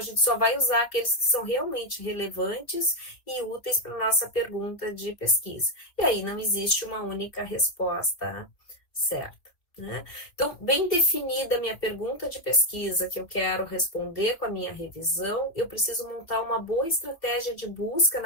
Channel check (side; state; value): right; late; 2.8 ms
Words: gente só vai usar aqueles que são realmente relevantes e úteis para a nossa pergunta de pesquisa. E aí não existe uma única resposta certa. Né? Então, bem definida a minha pergunta de pesquisa que eu quero responder com a minha revisão, eu preciso montar uma boa estratégia de busca